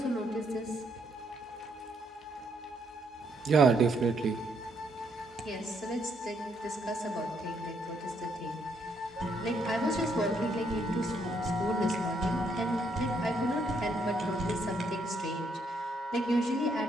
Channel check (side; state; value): both; normal; correlation 0.73